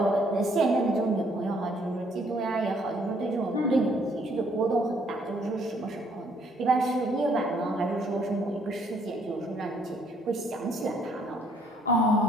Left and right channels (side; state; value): both; normal; correlation 0.66